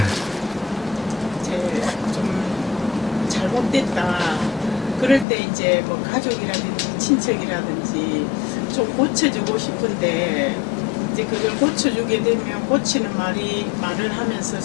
이제 좀 잘못됐다. 그럴 때 이제 뭐 가족이라든지 친척이라든지 좀 고쳐주고 싶은데 이제 그걸 고쳐주게 되면 고치는 말을 하면서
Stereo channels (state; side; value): drops out; right; at 5.2 s